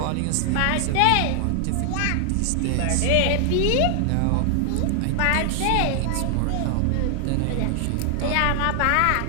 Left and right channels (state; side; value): different; both; correlation 0.00